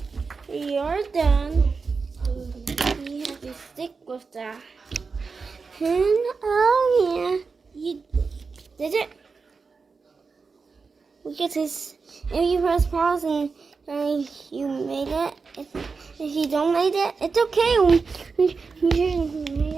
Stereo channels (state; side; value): quieter; left; 4.7 dB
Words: you're done. You have to stick with that. And oh yeah, you did it. We get this. If you press pause and you made it. If you don't make it, it's okay. You shouldn't make